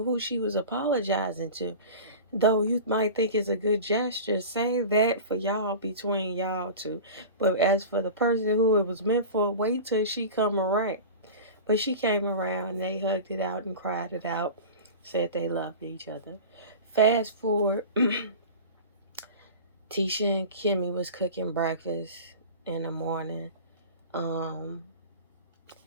she was apologizing to. Though you might think it's a good gesture, say that for y'all, between y'all two. But as for the person who it was meant for, wait till she come around. But she came around, they hugged it out and cried it out, said they loved each other. Fast forward, Tisha and Kimmy was cooking breakfast in the morning. Um,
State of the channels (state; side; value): inverted; both; correlation -0.33